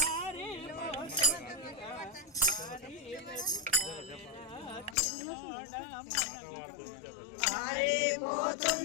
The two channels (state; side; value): drops out; right; at 5.0 s